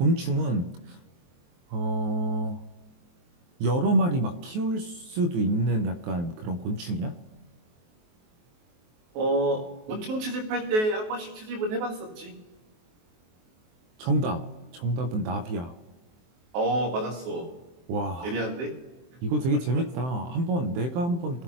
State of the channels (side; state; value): left; late; 23 ms